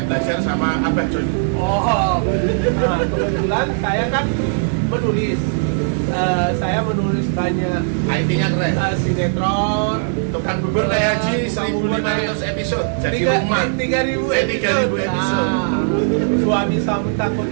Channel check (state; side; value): silent; left; digital silence